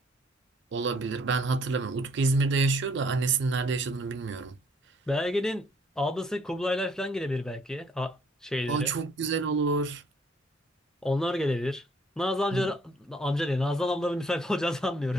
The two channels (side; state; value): both; normal; correlation 0.63